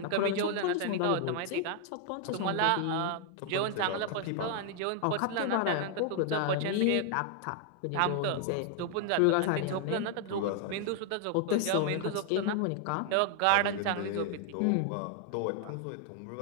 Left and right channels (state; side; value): different; both; correlation 0.00